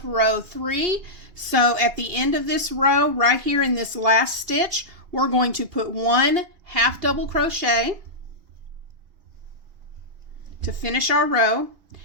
row 3. So at the end of this row, right here in this last stitch, we're going to put 1 half double crochet to finish our row,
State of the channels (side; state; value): left; late; 2.8 ms